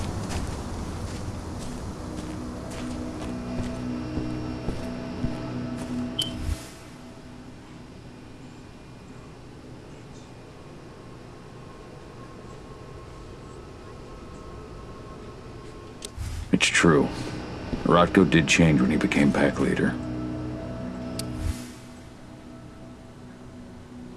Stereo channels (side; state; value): both; identical; correlation 1.00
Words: It's true. Rotko did change when he became pack leader.